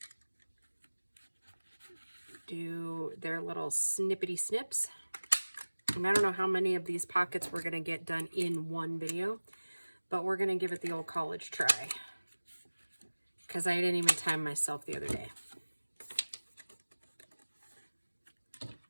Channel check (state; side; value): inverted; both; correlation -1.00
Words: do their little snippety snips. And I don't know how many of these pockets we're going to get done in one video, but we're going to give it the old college try, because I didn't even time myself the other day.